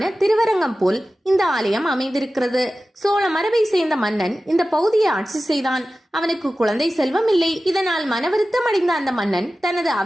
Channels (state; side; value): normal; both; correlation 0.95